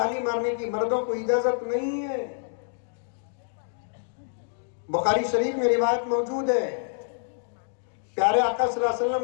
مارنے کی مردوں کو اجازت نہیں ہے۔ بخاری شریف میں روایت موجود ہے، پیارے آقا صلی اللہ علیہ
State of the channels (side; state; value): right; silent; digital silence